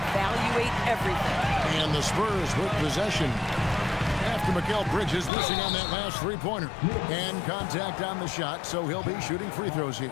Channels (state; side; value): drops out; right; at 5.3 s